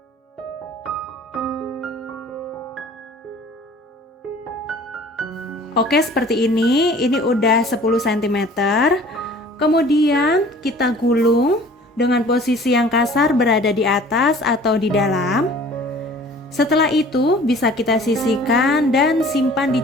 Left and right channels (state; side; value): normal; both; correlation 0.49